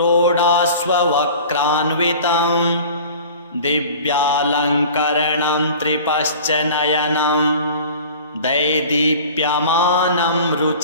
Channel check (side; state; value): both; inverted; correlation -0.41